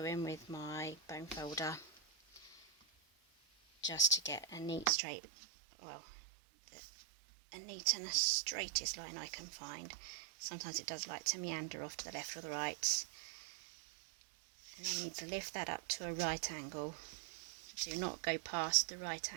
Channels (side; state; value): left; drops out; at 4.9 s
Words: in with my bone folder just to get a neat straight, well, a neat and the straightest line I can find. Sometimes it does like to meander off to the left or the right. And I need to lift that up to a right angle. Do not go past the right